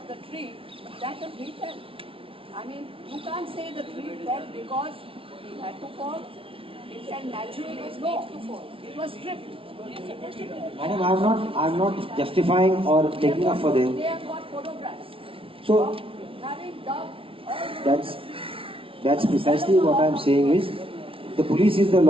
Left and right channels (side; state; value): left; late; 0.26 ms